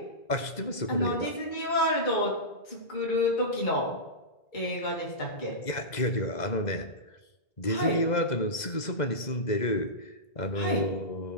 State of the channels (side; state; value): right; late; 2.0 ms